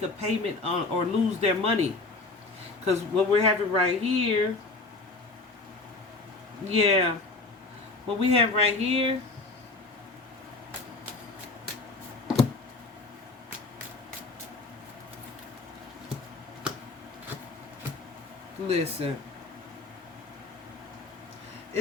a payment on, or lose their money. Because what we're having right here, yeah, what we have right here, listen,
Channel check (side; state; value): right; quieter; 3.5 dB